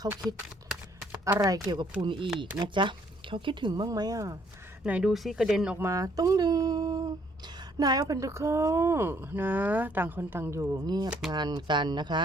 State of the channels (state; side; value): normal; both; correlation 0.65